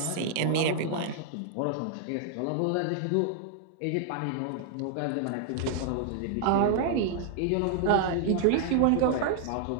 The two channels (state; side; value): different; both; correlation 0.00